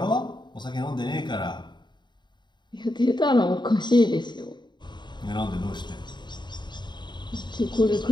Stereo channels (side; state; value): right; late; 0.22 ms